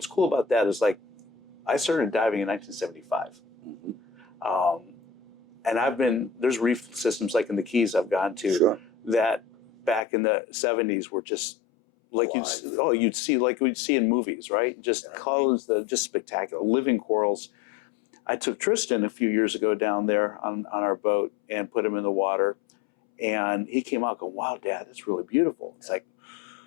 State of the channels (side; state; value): right; drops out; at 10.0 s